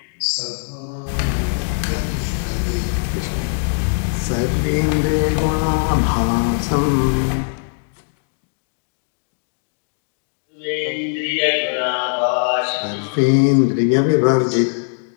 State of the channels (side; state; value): right; silent; digital silence